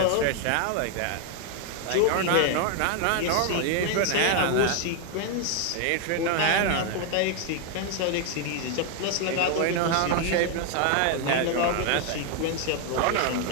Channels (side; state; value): both; different; correlation 0.01